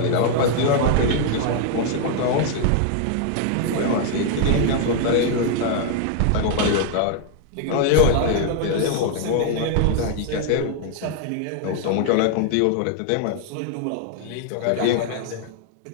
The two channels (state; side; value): different; both; correlation 0.00